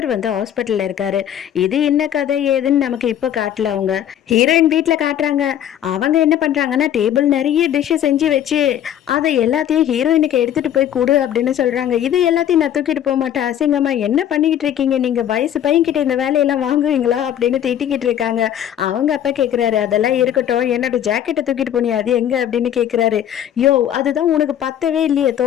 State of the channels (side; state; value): right; quieter; 10.5 dB